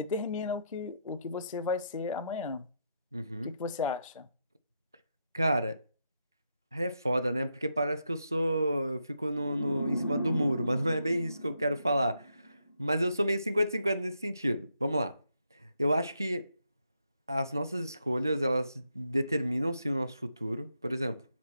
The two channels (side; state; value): both; inverted; correlation -0.80